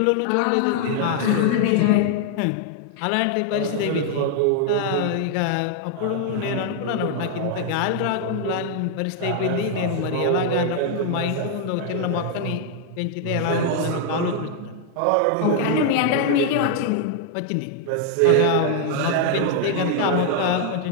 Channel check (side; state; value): both; different; correlation 0.00